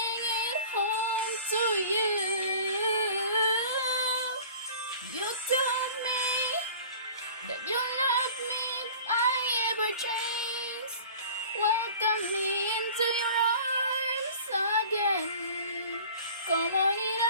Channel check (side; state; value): both; inverted; correlation -0.43